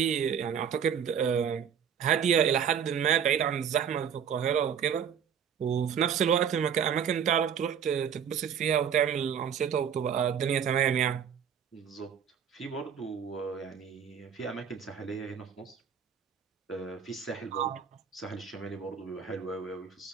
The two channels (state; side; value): quieter; left; 7.8 dB